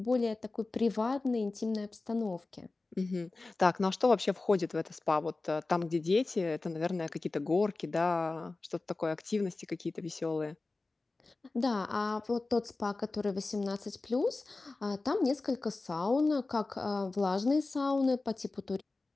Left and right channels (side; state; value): right; quieter; 3.4 dB